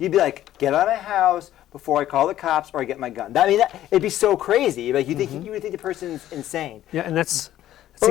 be like, get out of my house before I call the cops or I get my gun. It'd be so crazy. Like you would think the person's insane. Yeah, and that's. But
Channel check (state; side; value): quieter; right; 13.0 dB